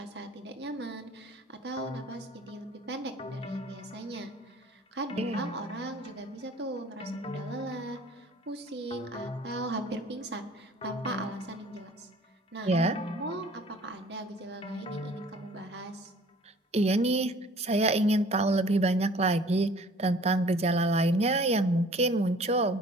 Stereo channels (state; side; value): normal; both; correlation 0.51